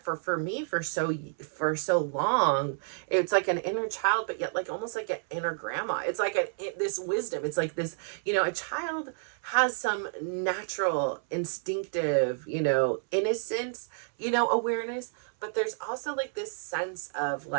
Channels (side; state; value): left; silent; 58 dB below the other